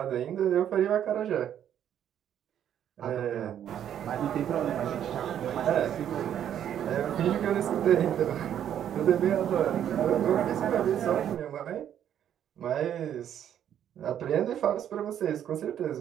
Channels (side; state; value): left; quieter; 10.0 dB